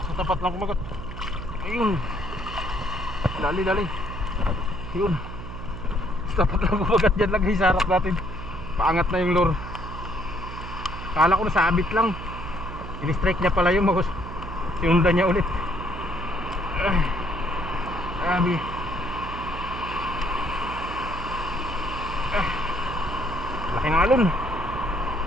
Sa tapat lang kumagat. Ayun. Dali. Ayun. Sa tapat lang kumagat dyan lang guys, sa harap natin. Paangat na yung lure. Kala ko nasabit lang. In-strike niya pala yung magos. Sinundan niya ulit. Grabe. Laking alon.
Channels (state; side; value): noise; right; hum, 10 dB below the sound